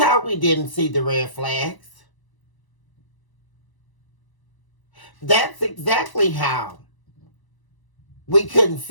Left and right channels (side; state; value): right; late; 1.0 ms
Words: we didn't see the red flags. That's exactly how we couldn't